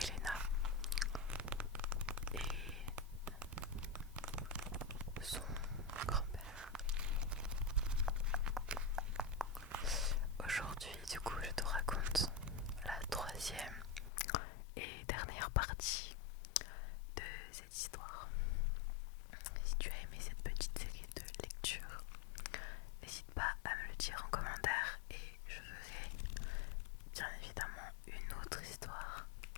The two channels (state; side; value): drops out; right; at 14.1 s